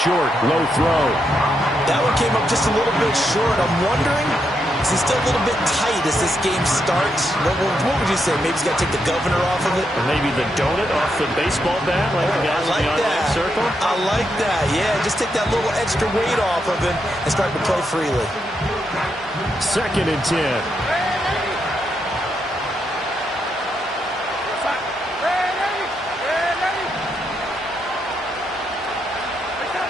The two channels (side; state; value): both; normal; correlation 0.81